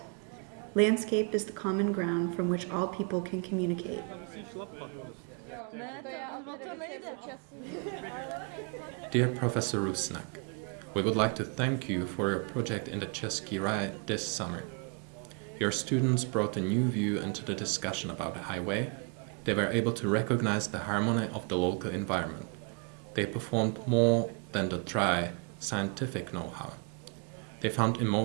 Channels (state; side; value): quieter; left; 34.7 dB